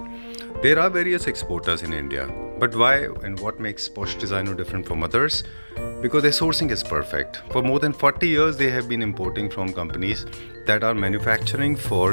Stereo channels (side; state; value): both; inverted; correlation -1.00